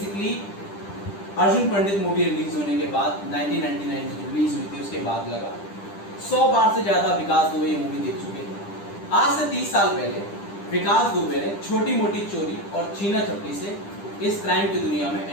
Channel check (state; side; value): late; right; 10 ms